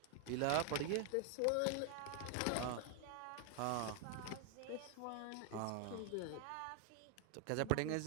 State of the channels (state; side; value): different; both; correlation 0.00